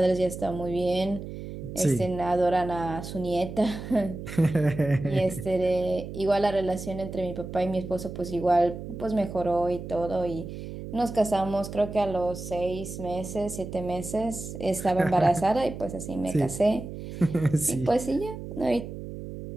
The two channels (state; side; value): noise; right; hum, 9 dB below the sound